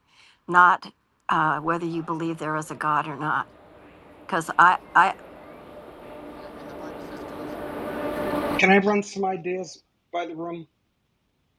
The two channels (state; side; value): identical; both; correlation 1.00